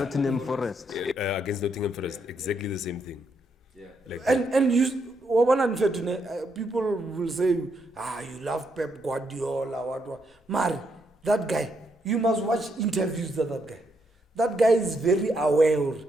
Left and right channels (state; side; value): normal; both; correlation 0.77